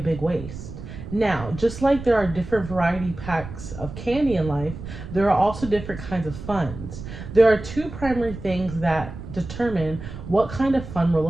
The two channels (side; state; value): right; noise; rumble, 11 dB below the sound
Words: waste. Now, just like there are different variety packs of candy in life, there are also different kinds of funds. There are two primary things that determine what kind of fund we're